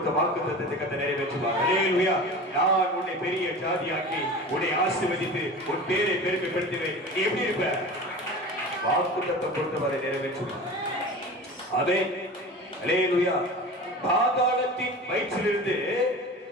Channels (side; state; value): both; normal; correlation 0.35